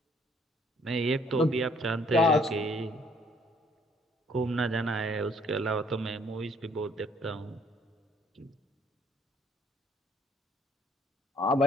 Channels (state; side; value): normal; both; correlation 0.63